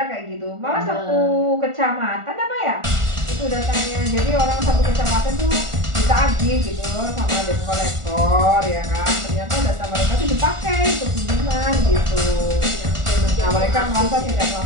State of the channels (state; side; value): late; left; 1.4 ms